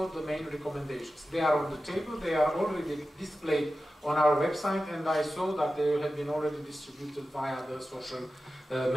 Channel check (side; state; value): both; normal; correlation 0.93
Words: the main recommendations. They are on the table, they are already displayed on our website, and I saw that they have been already distributed via the social